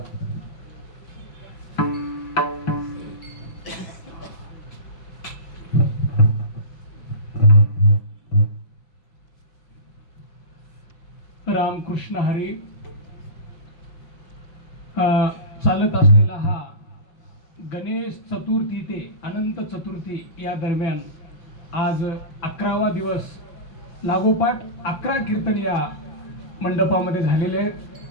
रामकृष्ण हरी. चालत असलेला हा गणेश चतुर्थी ते अनंत चतुर्थी या दरम्यान आज 11वा दिवस लागोपाठ 11 कीर्तन या मंडपामध्ये झालेले आहेत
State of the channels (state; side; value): late; right; 6.1 ms